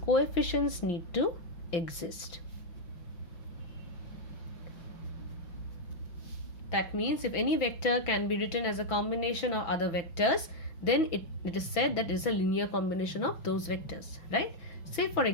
need to exist. That means if any vector can be written as a combination of other vectors, then it is said that it is a linear combination of those vectors, right? Say for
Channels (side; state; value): right; late; 6.1 ms